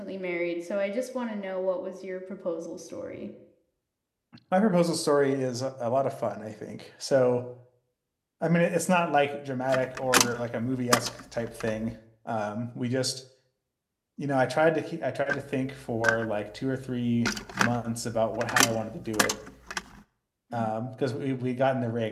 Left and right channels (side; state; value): both; identical; correlation 1.00